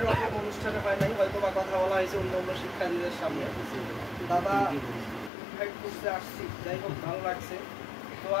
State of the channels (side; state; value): right; drops out; at 5.3 s